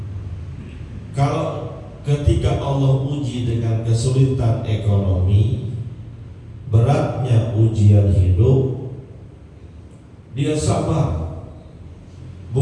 Kalau ketika Allah uji dengan kesulitan ekonomi, beratnya ujian hidup, dia sabar.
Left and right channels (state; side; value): identical; both; correlation 1.00